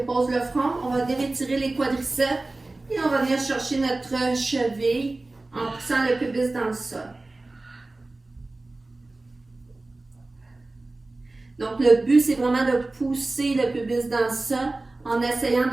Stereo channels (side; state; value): left; quieter; 3.1 dB